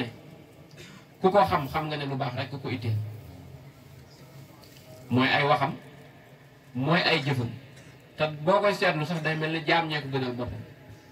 ku ko xam xam nga ne lu baax rek ku ko itteel mooy ay waxam mooy ay jëfam te boo koy seetlu sax day mel ni jaam ñee ko gënal boppam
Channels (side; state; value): both; identical; correlation 1.00